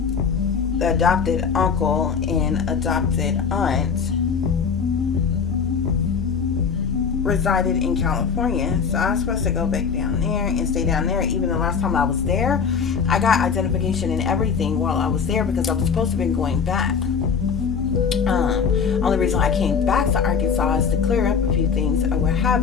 the adopted uncle and adopted aunt resided in California, so I was supposed to go back down there and stay down there. Even the last time I was there, I got identification and everything while I was there, because I was supposed to have been going back. Only reason I came back to Arkansas is to clear up a few things or what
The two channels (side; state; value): right; quieter; 6.2 dB